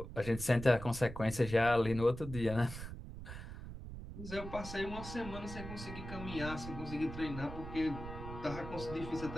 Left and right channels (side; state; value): right; noise; rumble, 10 dB below the sound